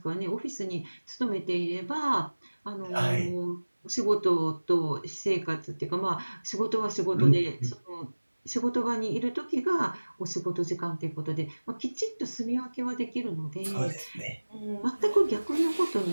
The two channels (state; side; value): inverted; both; correlation -1.00